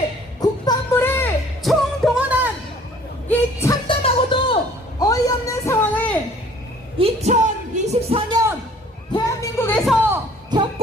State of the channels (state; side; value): normal; both; correlation 0.54